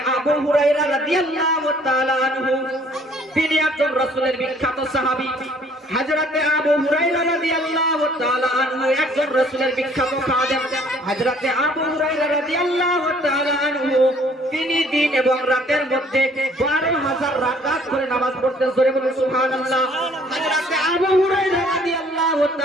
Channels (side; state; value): both; normal; correlation 0.58